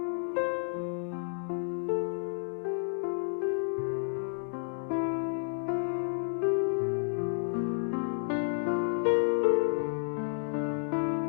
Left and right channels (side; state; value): right; silent; digital silence